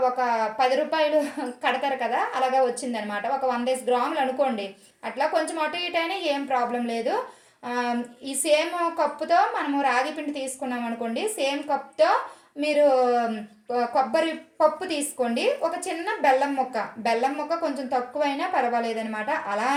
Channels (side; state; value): both; identical; correlation 1.00